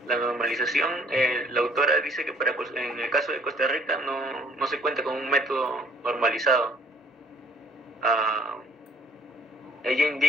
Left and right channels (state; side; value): normal; both; correlation 0.59